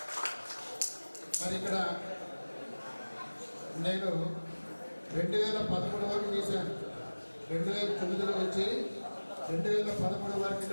మరి ఇక్కడ నేను 2013 వరకు చేశాను. 2009లో వచ్చి 2013 వరకు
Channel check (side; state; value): both; inverted; correlation -1.00